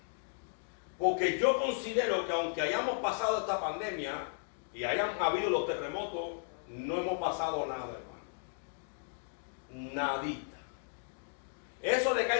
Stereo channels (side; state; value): right; silent; digital silence